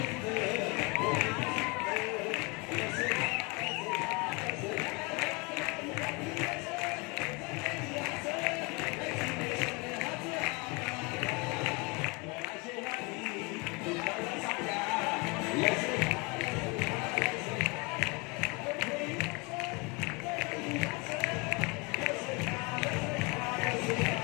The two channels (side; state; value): right; quieter; 28.6 dB